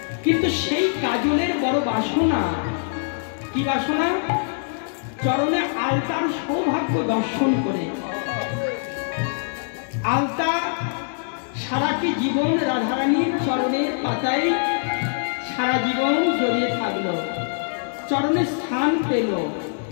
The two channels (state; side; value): silent; right; digital silence